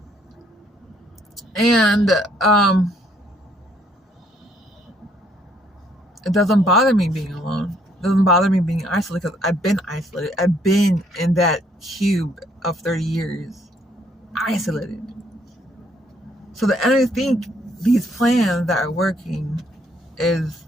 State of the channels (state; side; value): normal; both; correlation 0.67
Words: and it doesn't bother me being alone. It doesn't bother me being isolated because I've been isolated. I've been in that cube of 30 years, isolated. So the enemy think these plans that are working is